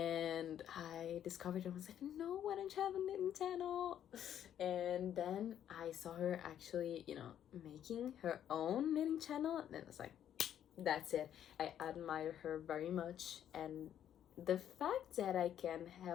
I discovered it. I was like, no, why don't you have a knitting channel? And then I saw her actually, you know, making her own knitting channel, and then I was like, that's it. I admire her very much, and the fact that I can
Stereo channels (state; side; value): quieter; right; 10.2 dB